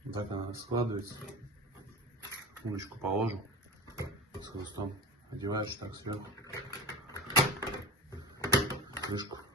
Вот так она складывается. Удочку положил с хвостом. Одеваешь так сверху. Крышку.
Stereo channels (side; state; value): both; normal; correlation 0.31